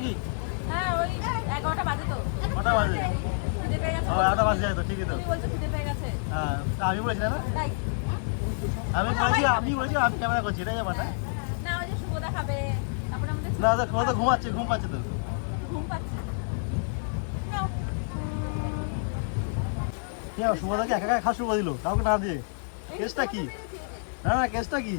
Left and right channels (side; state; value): right; silent; digital silence